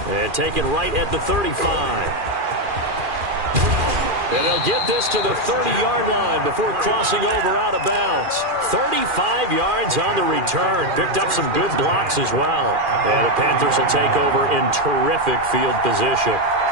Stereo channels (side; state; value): left; late; 2.4 ms